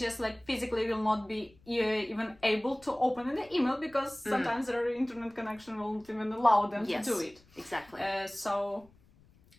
like physically will not be even able to open the email, because sometimes their internet connection won't even allow them to do it. Exactly. So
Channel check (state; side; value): noise; left; rumble, 28 dB below the sound